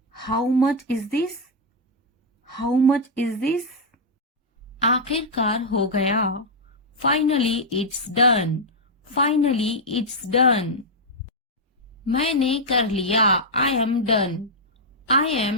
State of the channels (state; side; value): normal; both; correlation -0.04